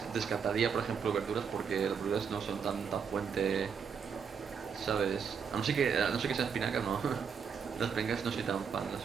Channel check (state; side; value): quieter; left; 6.6 dB